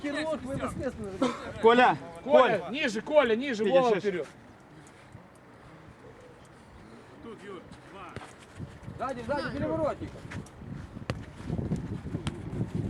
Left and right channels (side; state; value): both; identical; correlation 1.00